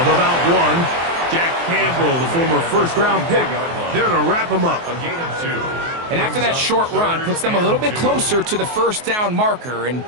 about 1. Jack Campbell, the former first-round pick, there to wrap him up. A gain of 2. And after that short run, puts them a little bit closer to the first down marker, and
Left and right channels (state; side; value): late; left; 24 ms